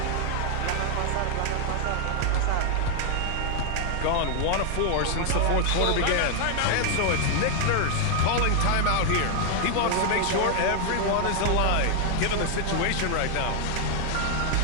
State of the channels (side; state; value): both; different; correlation 0.00